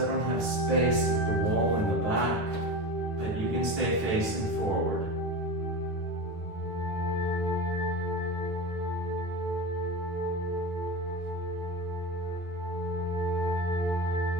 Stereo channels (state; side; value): late; left; 9.6 ms